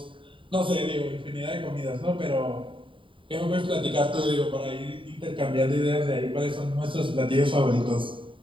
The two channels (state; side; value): late; left; 0.25 ms